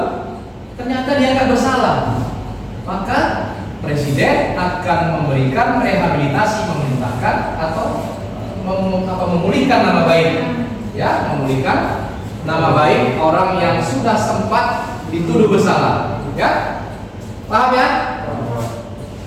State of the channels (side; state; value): both; identical; correlation 1.00